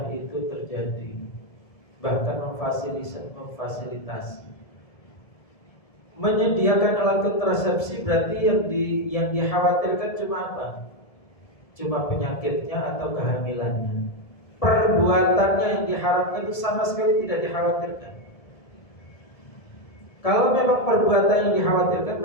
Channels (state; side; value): late; right; 1.7 ms